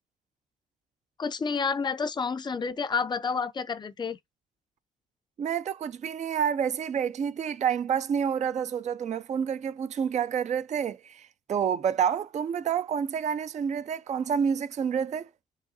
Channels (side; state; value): left; quieter; 4.2 dB